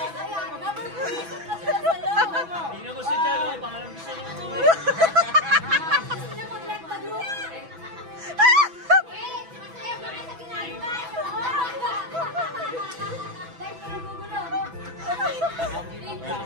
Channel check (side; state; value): left; late; 6.0 ms